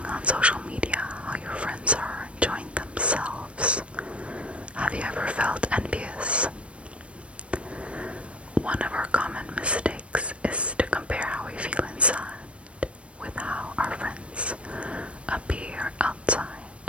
on social media how your friends are enjoying themselves, have you ever felt envious? One of our common mistakes is to compare how we feel inside with how our friends appear outside.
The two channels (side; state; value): left; late; 0.061 ms